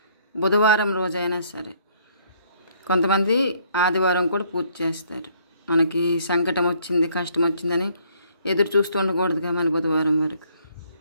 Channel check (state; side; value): inverted; both; correlation -0.64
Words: బుధవారం రోజైనా సరే. కొంతమంది ఆదివారం కూడా పూజ చేస్తారు. మనకి సంకటం వచ్చింది, కష్టం వచ్చిందని ఎదురు చూస్తూ ఉండకూడదుగా, మన బుధవారం వరకు